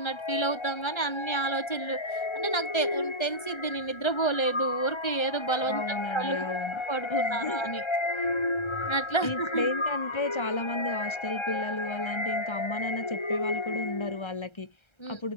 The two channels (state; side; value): late; right; 1.3 ms